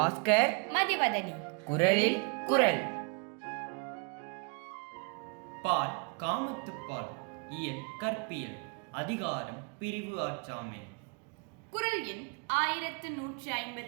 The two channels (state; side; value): quieter; left; 35.5 dB